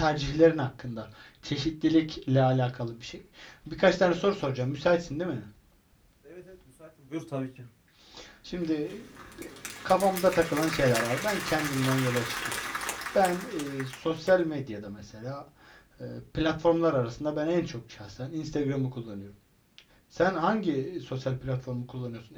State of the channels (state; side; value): identical; both; correlation 1.00